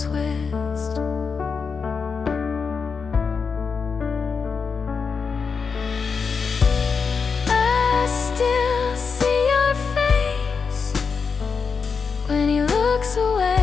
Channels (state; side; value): quieter; right; 5.5 dB